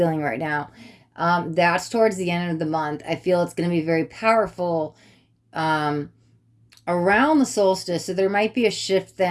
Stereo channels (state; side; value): identical; both; correlation 1.00